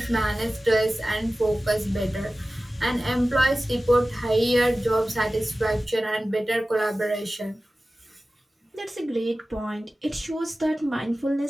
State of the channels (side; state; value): both; normal; correlation 0.96